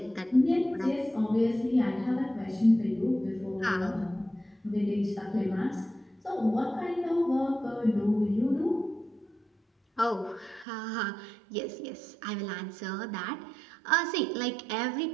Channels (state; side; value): drops out; left; at 10.7 s